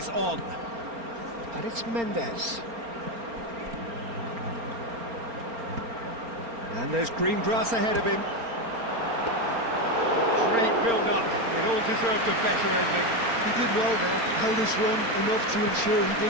on. And it's Mendes. And there's green grass ahead of him. Great build-up. It all deserved a better ending. He did well there, held his run enough to ensure he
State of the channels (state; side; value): late; left; 4.3 ms